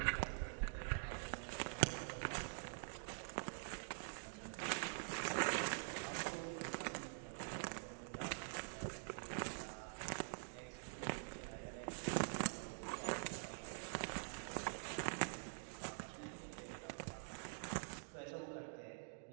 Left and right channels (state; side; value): silent; left; digital silence